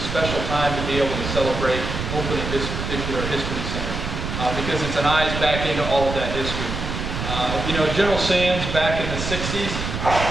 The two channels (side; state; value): right; noise; rumble, 4 dB below the sound